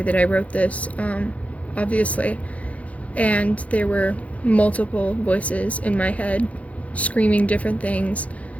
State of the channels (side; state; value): right; late; 0.066 ms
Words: I wrote this, obviously, and there were multiple voices in my head screaming different things